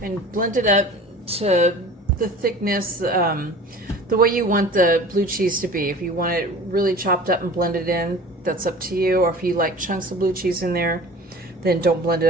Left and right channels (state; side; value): normal; both; correlation 0.41